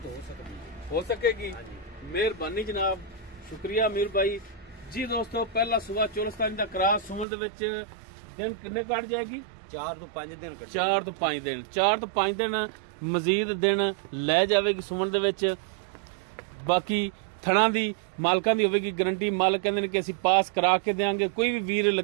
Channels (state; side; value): drops out; left; at 7.2 s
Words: हो सकेगी। मेहरबानी जनाब, शुक्रिया मीर भाई जी। दोस्तों पहला सुबह चोलस्तानी दा क्रॉस सुमन दे विच दिन किन्ने कट जाएगी? 4 तो 5 दिन। 4 तो 5 दिन 4 तो 5 दिन मजीद दिन लै जावेगी सुमन दे विच। बाकी थणा दी मालकां दी होवेगी गारंटी। मालक कहंदे ने कि असीं पास करा के देंगे। कोई भी वीर